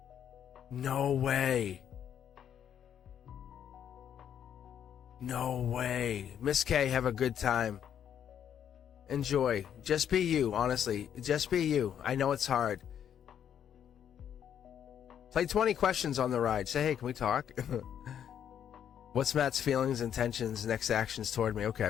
No way. No way. Miss K, have a good time. Enjoy. Just be you, honestly. Just be you. I know it's hard. Play 20 questions on the ride. Say, hey, can we talk? What's Matt's feelings, intentions, next actions toward me? Okay,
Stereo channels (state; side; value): quieter; right; 9.2 dB